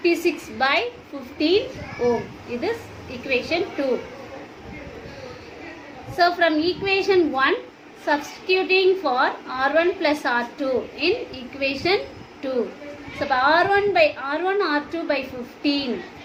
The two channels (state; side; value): identical; both; correlation 1.00